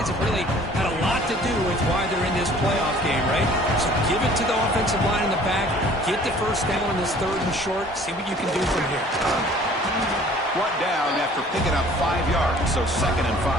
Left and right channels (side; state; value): both; normal; correlation 0.52